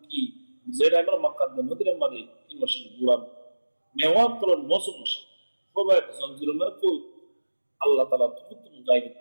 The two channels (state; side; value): inverted; both; correlation -1.00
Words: কি যেটা আমরা মক্কার মদিনার মধ্যে 3 মাস ঘুরাম মেওয়াত করার মৌসুম খুবাইবে জঞ্জির মানে কই আল্লাহ তাআলা তুমি গাইবে